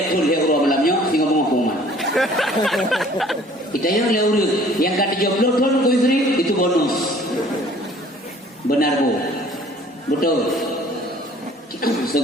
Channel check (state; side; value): normal; both; correlation 0.53